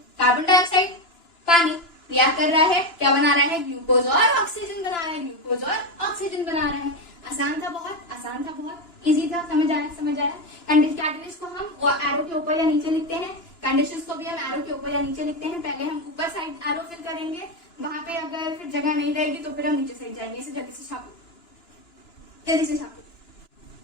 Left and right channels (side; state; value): right; late; 2.9 ms